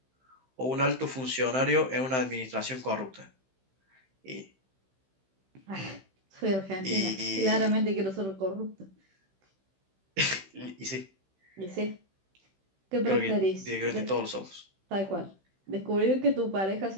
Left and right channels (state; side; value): late; left; 16 ms